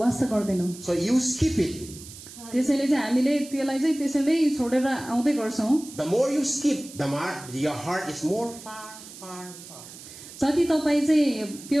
गर्दैनौं. So you skip it. त्यसैले चाहिँ हामीले त्यसलाई चाहिँ त्यसैले छोडेर आउँदै गर्छौं. The more you skip, the more your heart is more far. जति तपाई चाहिँ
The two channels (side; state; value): right; noise; hiss, 16 dB below the sound